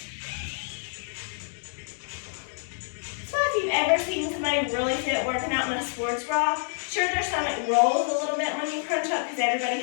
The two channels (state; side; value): silent; right; digital silence